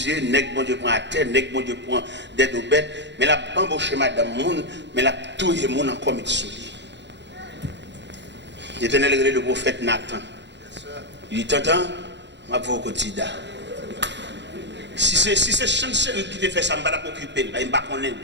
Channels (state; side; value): late; left; 0.52 ms